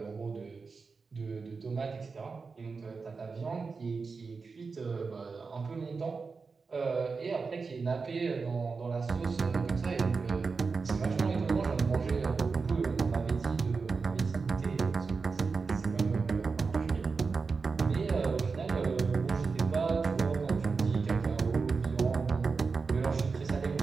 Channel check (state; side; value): quieter; left; 4.7 dB